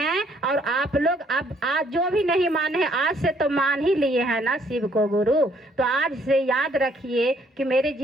और आप लोग अब आज जो भी नहीं माने हैं, आज से तो मान ही लिए हैं ना शिव को गुरु। तो आज से याद रखिए कि मेरे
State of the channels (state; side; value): normal; both; correlation 0.65